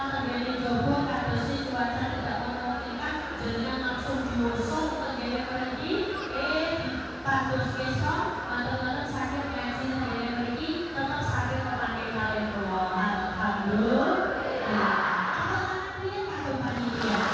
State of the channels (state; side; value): identical; both; correlation 1.00